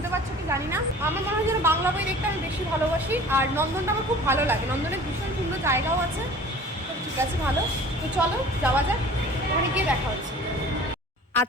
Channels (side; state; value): both; normal; correlation 0.45